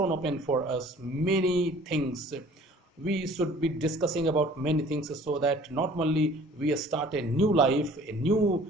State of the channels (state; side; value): normal; both; correlation 0.51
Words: for us many things. We should be discussing about many things, so that not only we start a new life, a new